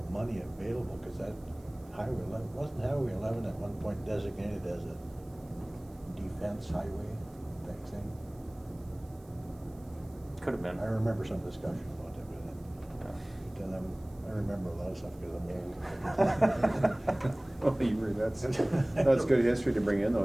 money available, because that Highway 11, wasn't Highway 11 at one point designated as a defense highway type thing? Could have been. I remember some discussion about that, but then I remember a lot of stuff because I'm old. Oh, that's good history to bring in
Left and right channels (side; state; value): right; noise; hiss, 29 dB below the sound